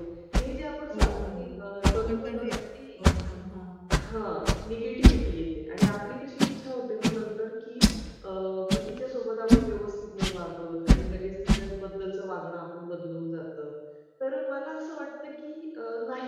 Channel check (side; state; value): both; identical; correlation 1.00